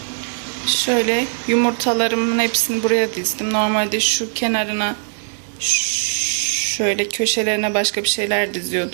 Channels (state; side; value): silent; left; digital silence